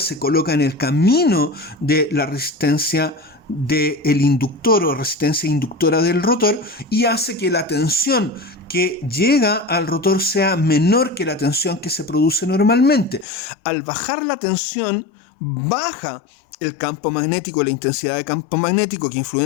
coloca en el camino de la resistencia del inductor o resistencia inductora del rotor y hace que la tensión que llega al rotor sea menor que la tensión que se produce normalmente. Al bajar la tensión, baja el campo magnético, la intensidad de campo magnético que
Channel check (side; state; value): right; drops out; at 13.2 s